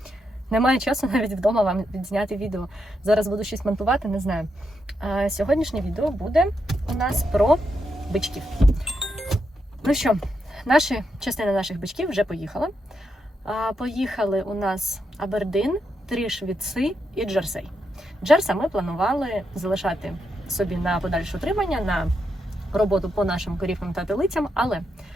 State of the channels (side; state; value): both; normal; correlation 0.83